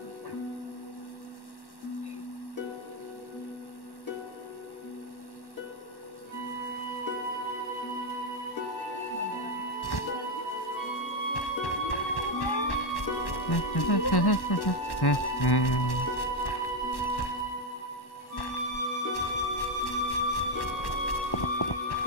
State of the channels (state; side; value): late; right; 1.1 ms